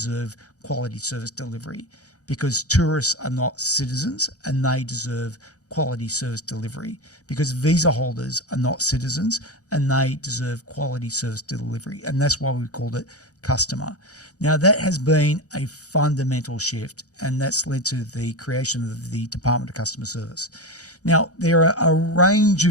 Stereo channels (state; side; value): late; right; 0.66 ms